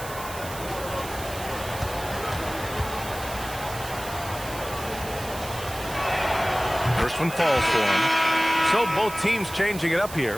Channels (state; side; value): noise; right; hiss, 12 dB below the sound